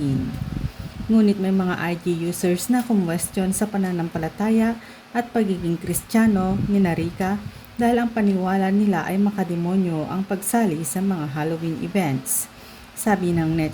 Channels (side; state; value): both; identical; correlation 1.00